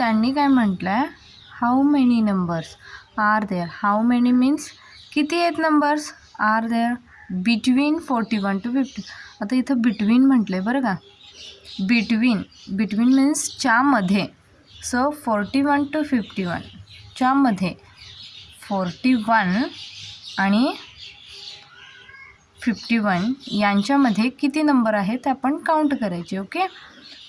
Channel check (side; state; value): both; identical; correlation 1.00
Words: काय म्हटलं आहे, how many numbers are there. How many means किती आहेत numbers, are there between 41 to 50. आता इथं बिटवीन म्हटलं आहे बरं का, बिटवीन, बिटवीन मीन्स च्यामध्ये. सो 41 to 51 च्यामध्ये 41 आणि 51 यांच्यामध्ये किती नंबर आहेत ते आपण काउंट करायचे. ओके,